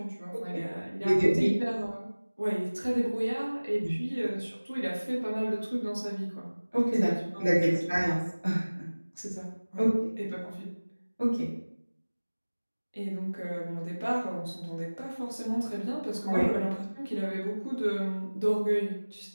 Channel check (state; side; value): inverted; both; correlation -1.00